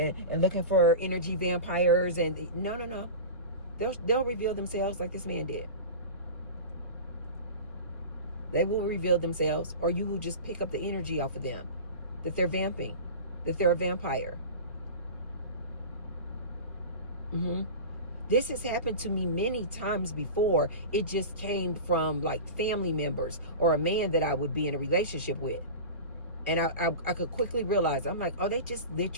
looking for energy vampires. And no. They'll reveal themselves like this man did. They will reveal themselves, or you will just pick up the energy off of them, that they're vamping, that they're a vampire. This has happened to me many times before. It just came from like family members or a man that I would be in a relationship with. And I could quickly realize, I'm like, oh, they just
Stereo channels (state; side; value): inverted; both; correlation -0.31